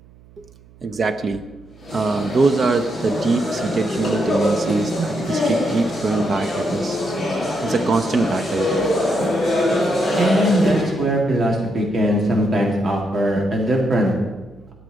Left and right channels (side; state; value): right; noise; hum, 25 dB below the sound